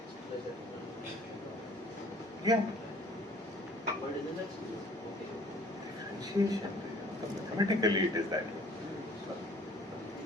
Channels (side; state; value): both; normal; correlation 0.54